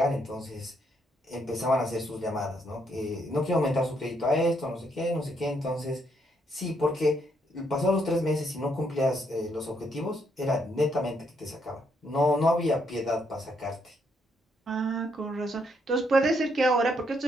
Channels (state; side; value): normal; both; correlation 0.74